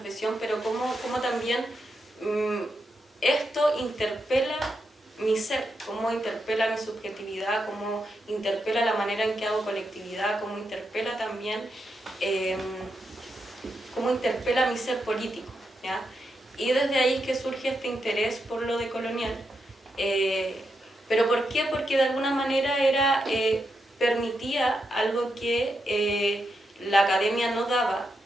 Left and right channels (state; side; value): normal; both; correlation 0.84